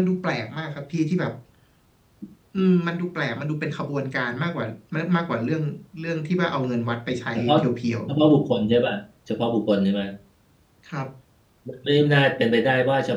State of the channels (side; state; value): both; identical; correlation 1.00